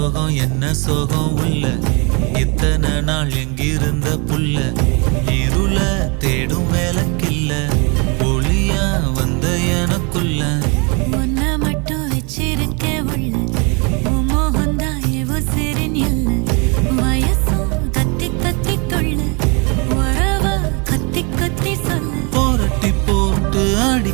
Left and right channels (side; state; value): left; quieter; 31.8 dB